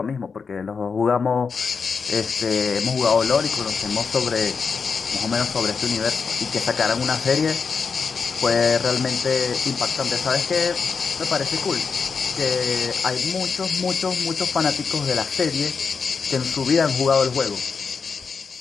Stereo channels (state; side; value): quieter; right; 5.4 dB